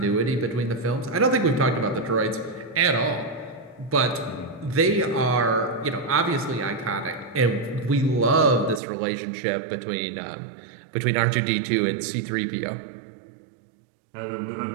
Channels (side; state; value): left; drops out; at 8.8 s